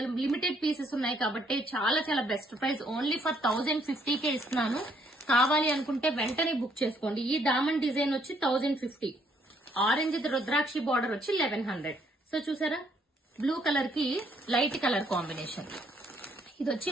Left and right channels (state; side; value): normal; both; correlation 0.68